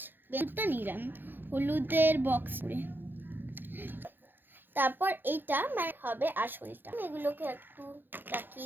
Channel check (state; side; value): late; left; 0.096 ms